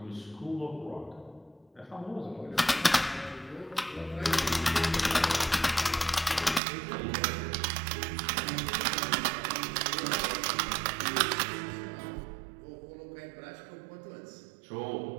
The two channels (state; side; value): drops out; left; at 6.6 s